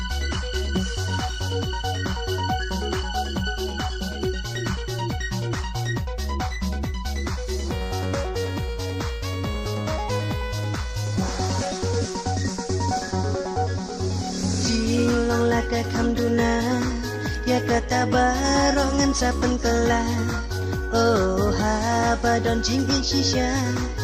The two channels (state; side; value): identical; both; correlation 1.00